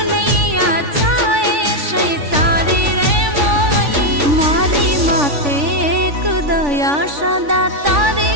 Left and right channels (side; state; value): left; late; 3.5 ms